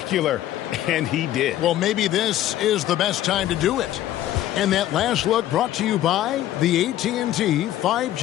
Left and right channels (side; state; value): right; quieter; 13.2 dB